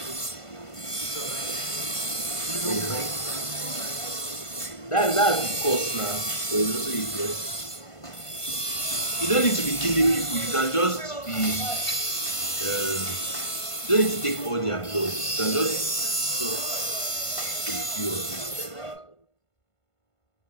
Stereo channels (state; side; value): late; right; 1.5 ms